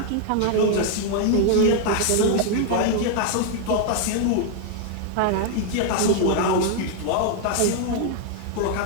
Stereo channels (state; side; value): different; both; correlation 0.00